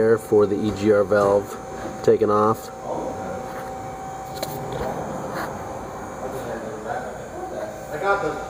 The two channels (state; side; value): identical; both; correlation 1.00